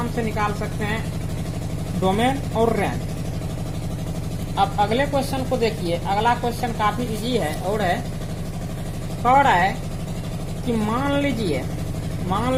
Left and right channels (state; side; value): identical; both; correlation 1.00